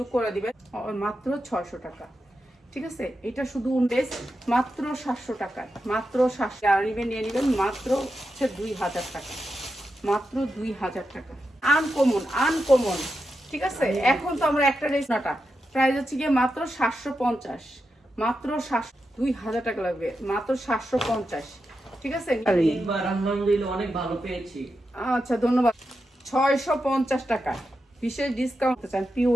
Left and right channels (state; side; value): normal; both; correlation 0.88